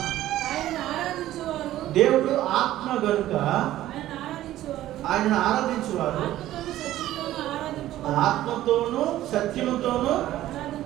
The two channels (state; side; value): quieter; left; 14.1 dB